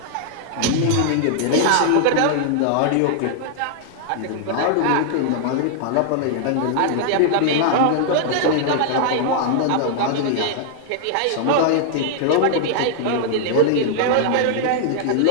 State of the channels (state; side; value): different; both; correlation -0.01